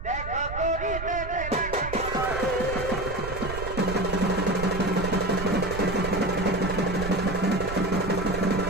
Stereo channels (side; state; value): right; noise; rumble, 8 dB below the sound